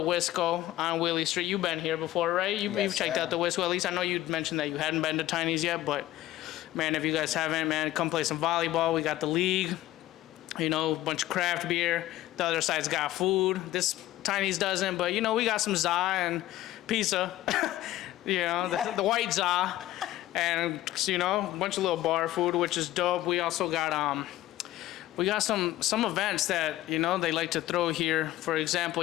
Wisco on Willie Street. You've been here before, right? You've checked out the Wisco. At least I know you mentioned that you hadn't been to Tiny's yet. But, man, if you guys haven't, man, come play some volleyball. We got the league, a bunch of craft beer. The other side's got food. This Tiny's doesn't. But, we got some za and pizza, the white za. And, a bunch of little bar food, which is dope. We also got... We got some events that, they like to throw here. For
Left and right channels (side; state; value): right; quieter; 15.0 dB